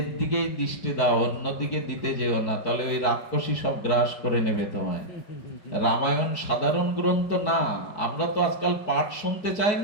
দিকেই দৃষ্টি দাও, অন্যদিকে দিতে যেও না, তাহলে ওই রাক্ষসী সব গ্রাস করে নেবে তোমায়। রামায়ণ সাধারণ গ্রন্থ না। আমরা তো আজকাল পাঠ শুনতে চাই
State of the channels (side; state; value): right; late; 4.6 ms